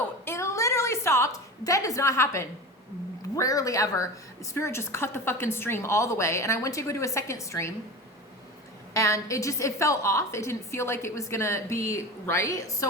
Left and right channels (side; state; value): both; normal; correlation 0.30